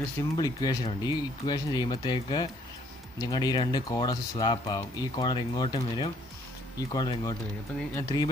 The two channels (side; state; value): both; normal; correlation 0.64